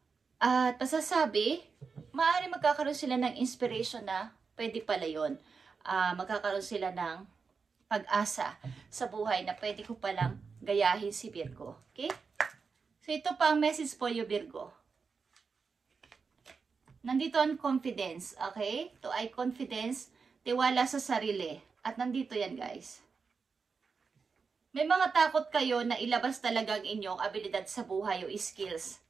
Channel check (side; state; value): left; quieter; 5.2 dB